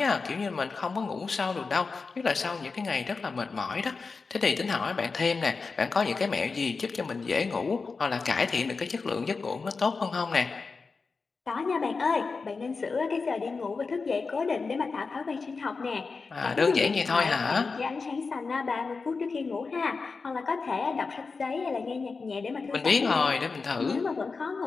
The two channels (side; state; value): right; quieter; 4.5 dB